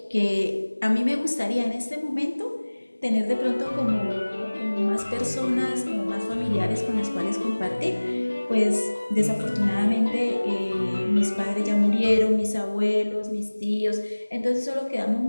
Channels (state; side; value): inverted; both; correlation -1.00